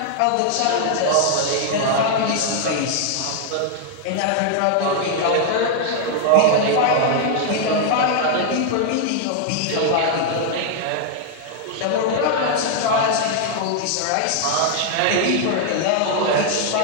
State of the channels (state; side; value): different; both; correlation 0.00